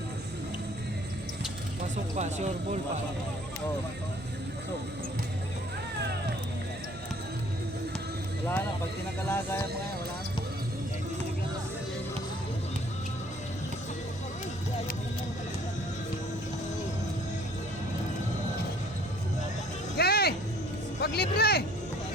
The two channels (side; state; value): right; noise; hum, 17 dB below the sound